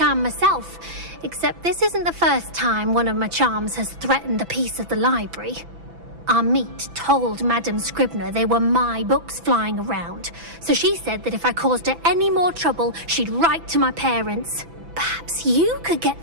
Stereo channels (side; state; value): left; late; 6.0 ms